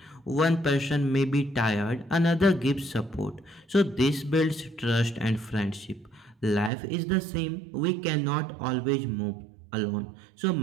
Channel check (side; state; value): left; drops out; at 6.7 s